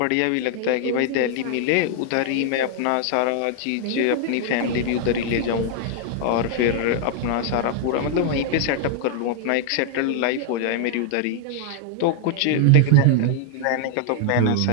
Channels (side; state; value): both; different; correlation 0.00